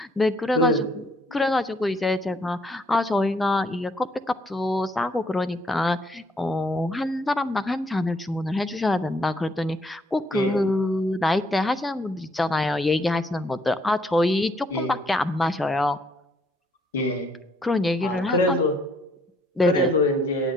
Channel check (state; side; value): normal; both; correlation 0.68